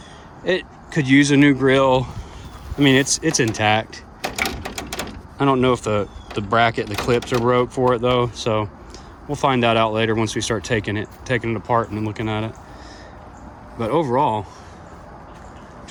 It could use a new grille. I mean, it's intact. I don't know if the bracket, the clips are broke for it though, so we'll find that out later once we start taking it apart and looking at it. But overall,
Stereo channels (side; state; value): both; identical; correlation 1.00